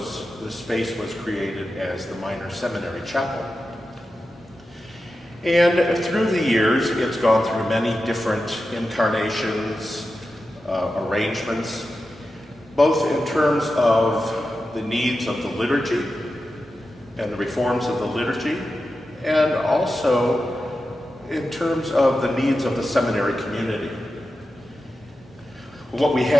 space was created as the minor seminary chapel. And through the years, it's gone through many different incarnations, arrangements, both in terms of the needs of the liturgy and the reforms of the liturgy, and also in terms of the needs of the seminary community. What we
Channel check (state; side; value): normal; both; correlation 0.91